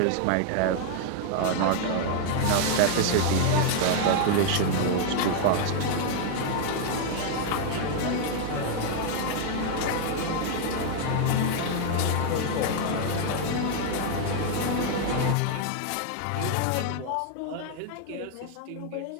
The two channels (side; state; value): both; different; correlation 0.00